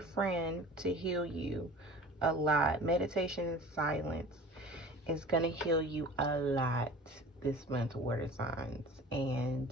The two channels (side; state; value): both; normal; correlation 0.41